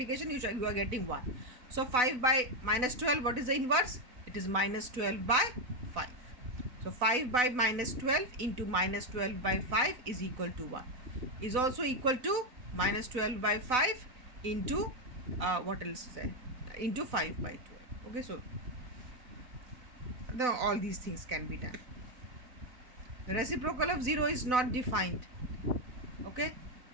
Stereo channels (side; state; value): left; late; 4.0 ms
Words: you are getting 1. So 5 by minus 12, what is the inverse? It is minus 12 by 5. So 5 by minus 12 into minus 12 by 5 is equal to 1. Is also equal to minus 12 by 5 into what else is into 5 by 12. Okay, so all these things can be done. The reciprocal of 0 is not defined. Okay,